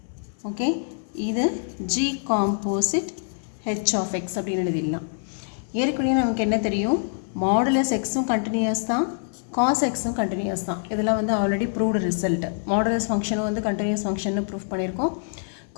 Okay, இது g composite h of x அப்படின்னு எழுதிடலாம். ஏற்கனவே நமக்கு என்ன தெரியும், மாடுலஸ் எக்ஸும் கண்டினியூஸ் தான், காஸ் எக்ஸும் கண்டினியூஸ் தான். இதெல்லாம் வந்து ஆல்ரெடி ப்ரூவ்டு ரிசல்ட். மாடுலஸ் ஃபங்க்ஷனும் வந்து கண்டினியூஸ் ஃபங்க்ஷன்னு ப்ரூவ் பண்ணியிருக்கோம்,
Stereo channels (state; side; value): silent; right; 58 dB below the other